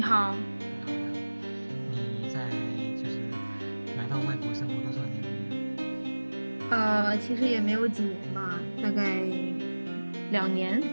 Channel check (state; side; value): inverted; both; correlation -1.00